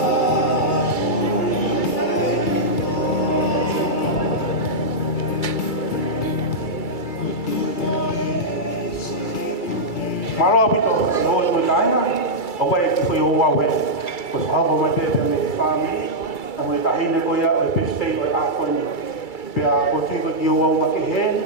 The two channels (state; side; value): late; right; 2.3 ms